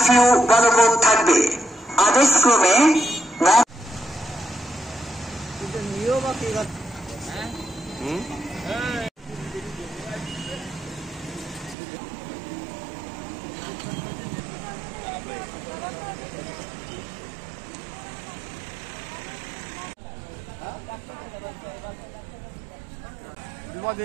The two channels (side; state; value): left; drops out; at 11.8 s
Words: কারফিউ বলবৎ থাকবে। আদেশক্রমে